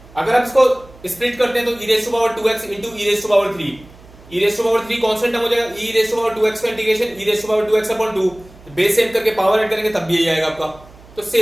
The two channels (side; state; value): right; noise; hum, 23 dB below the sound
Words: अगर आप इसको स्प्लिट करते हैं तो e raise to power 2x into e raise to power 3, e raise to power 3 constant term हो जाएगा, e raise to power 2x का integration e raise to power 2x upon 2, base same करके power add करेंगे तब भी यही आएगा आपका, तो